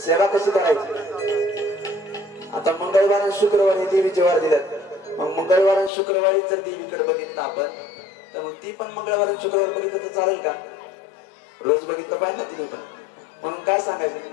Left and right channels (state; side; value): drops out; right; at 5.9 s